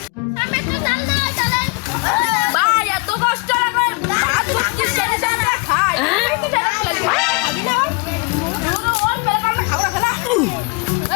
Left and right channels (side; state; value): right; quieter; 29.6 dB